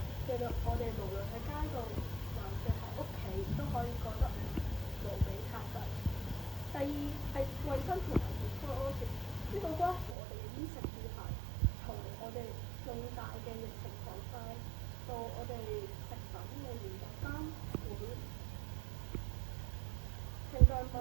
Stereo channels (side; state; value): left; drops out; at 10.2 s